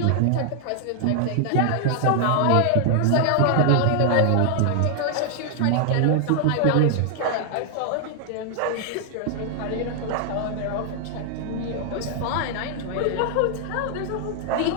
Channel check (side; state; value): both; different; correlation 0.00